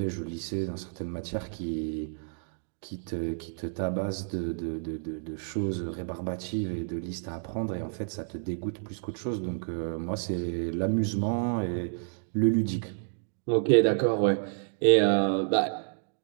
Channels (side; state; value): left; silent; digital silence